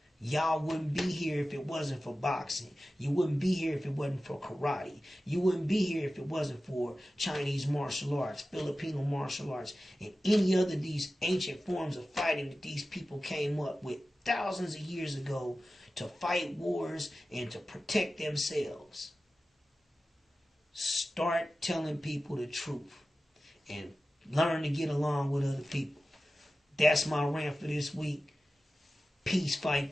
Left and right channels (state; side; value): normal; both; correlation 0.95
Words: Y'all wouldn't be here if it wasn't for boxing. You wouldn't be here if it wasn't for karate. You wouldn't be here if it wasn't for Chinese martial arts, Filipino martial arts, and any other of these ancient forms of fighting that these people came up with thousands of years ago to fight wars and to protect themselves. Start telling people the truth and learn to get along with other people. That's my rant for this week. Peace,